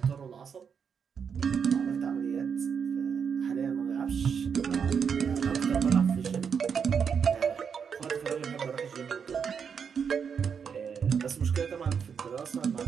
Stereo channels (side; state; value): left; quieter; 6.7 dB